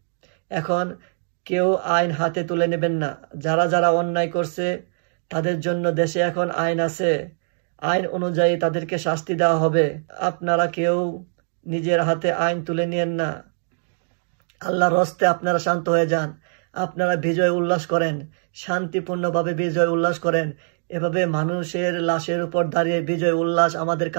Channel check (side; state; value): left; silent; digital silence